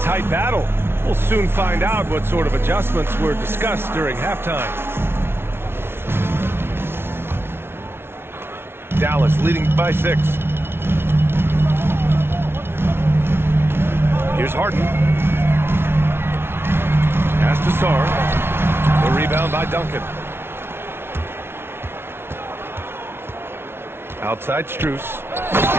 battle. We'll soon find out what sort of adjustments were discussed during halftime. Dallas leading by 6. Here's Harden. Pass to Sarr. The rebound by Duncan. Outside Strus.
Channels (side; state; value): left; late; 0.12 ms